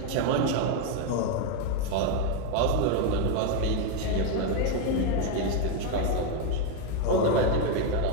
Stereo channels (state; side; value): different; both; correlation 0.01